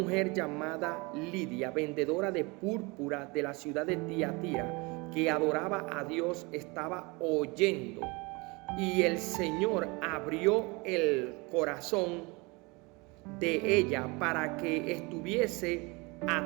llamada Lidia, vendedora de púrpura de la ciudad de Tiatira, que adoraba a Dios, estaba oyendo, y el Señor abrió el corazón de ella para que estuviese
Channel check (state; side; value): quieter; left; 26.7 dB